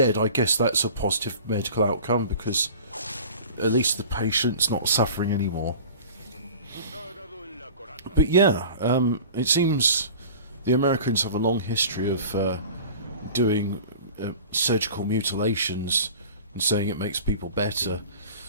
I guess that's a positive medical outcome because at least the patient's not suffering anymore. But yeah, it seems the Americans have a long history of doing surgical mutilations and saying it makes people better,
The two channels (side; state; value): both; inverted; correlation -0.41